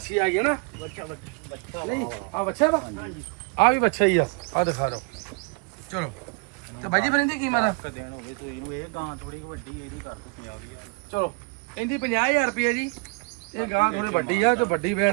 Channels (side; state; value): left; quieter; 31.0 dB